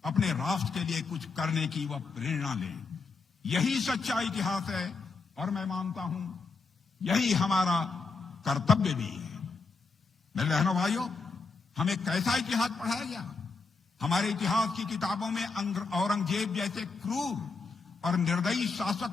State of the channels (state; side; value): quieter; right; 4.3 dB